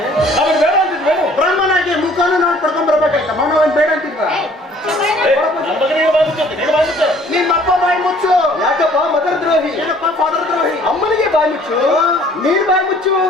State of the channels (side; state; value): both; normal; correlation 0.56